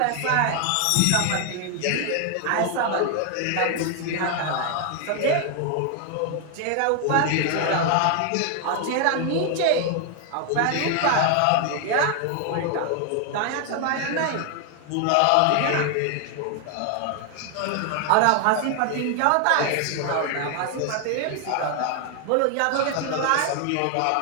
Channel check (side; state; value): both; different; correlation 0.00